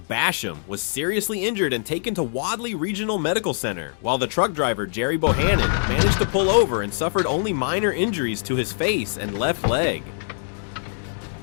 Basham, was seriously injured and taken to Wadley Regional Medical Center, while the truck driver, Jerry Bohannon, managed to pull over and suffered only minor injuries to his face and left leg.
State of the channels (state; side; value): silent; right; digital silence